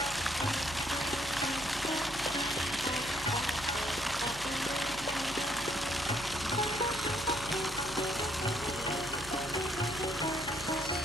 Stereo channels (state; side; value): normal; both; correlation 0.69